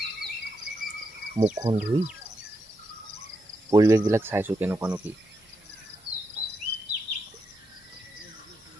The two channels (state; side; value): normal; both; correlation 0.83